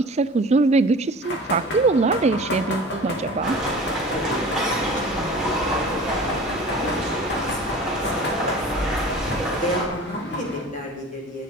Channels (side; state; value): both; normal; correlation 0.40